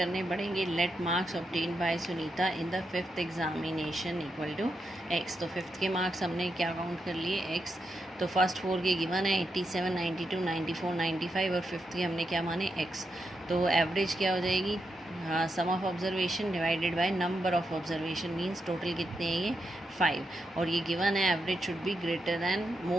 पड़ेंगे। Let marks obtain by Sunita in the 5th examination equal to x. तो 5th के मार्क्स हमने क्या काउंट कर लिए? एक्स। तो फर्स्ट 4 के गिवन है 87, 92, 94, 95 और 5th के हमने क्या माने? एक्स। तो एवरेज क्या हो जाएगी? Sum of observation divided by number of observation means total कितने हैं ये? 5। और ये गिवन है average should be greater than,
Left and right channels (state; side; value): normal; both; correlation 0.84